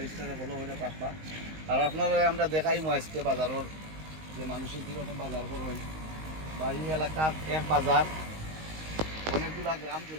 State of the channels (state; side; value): late; left; 19 ms